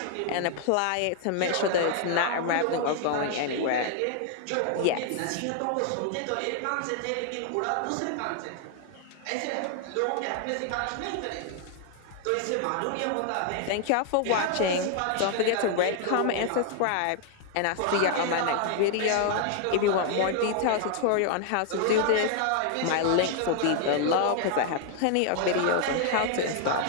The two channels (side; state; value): both; different; correlation 0.00